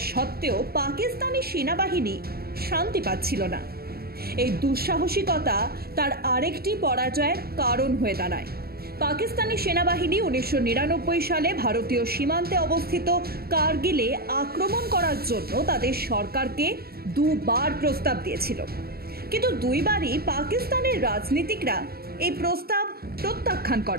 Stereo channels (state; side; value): late; left; 0.45 ms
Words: সত্ত্বেও পাকিস্তানি সেনাবাহিনী শান্তি পাচ্ছিল না। এই দুঃসাহসিকতা তার আরেকটি পরাজয়ের কারণ হয়ে দাঁড়ায়। পাকিস্তানি সেনাবাহিনী 1999 সালে ভারতীয় সীমান্তে অবস্থিত কার্গিলে আক্রমণ করার জন্য তাদের সরকারকে দুবার প্রস্তাব দিয়েছিল, কিন্তু দুইবারই পাকিস্তানের রাজনীতিকরা এই প্রস্তাব প্রত্যাখ্যান